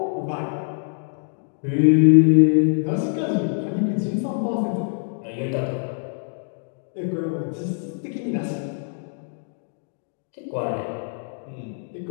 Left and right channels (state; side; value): silent; right; 60 dB below the other